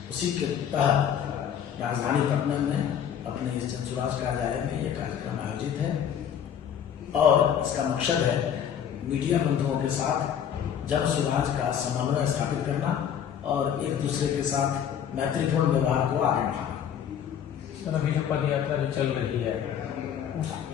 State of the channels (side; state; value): right; quieter; 8.9 dB